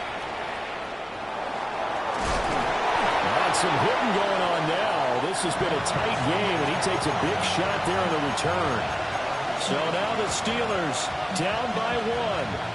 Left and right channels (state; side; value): identical; both; correlation 1.00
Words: Got some hitting going on now. This has been a tight game, and he takes a big shot there on the return. So now the Steelers down by